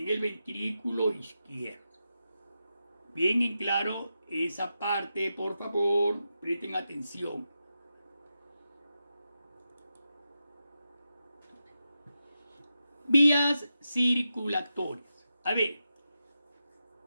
el ventrículo izquierdo. Bien en claro esa parte, por favor, presten atención. Vías circulatorias. A ver,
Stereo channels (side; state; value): both; inverted; correlation -0.89